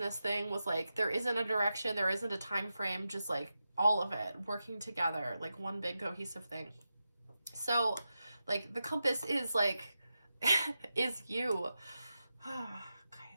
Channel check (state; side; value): inverted; both; correlation -0.90